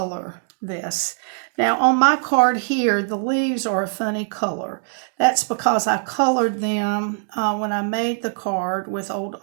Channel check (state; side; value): silent; left; digital silence